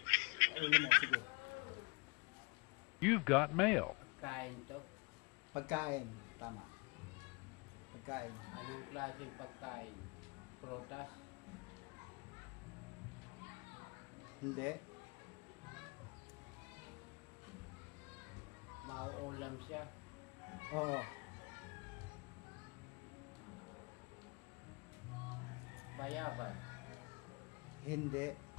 Ulo mo, sige. You've got mail. Pagkain to. Pagkain, tama. Pagkain. Anong klaseng pagkain? Prutas? Hindi. Mauulam siya? Oo. Bayabas? Hindi.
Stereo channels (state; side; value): quieter; right; 30.0 dB